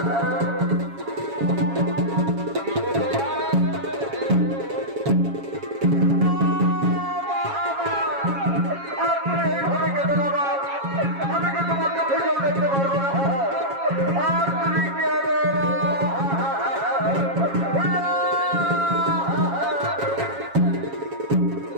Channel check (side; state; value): left; late; 7.3 ms